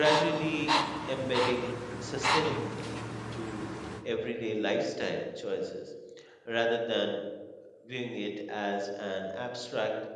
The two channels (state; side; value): identical; both; correlation 1.00